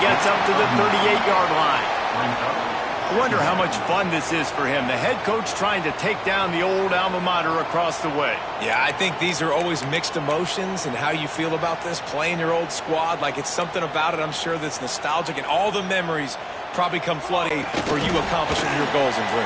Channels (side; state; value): both; identical; correlation 1.00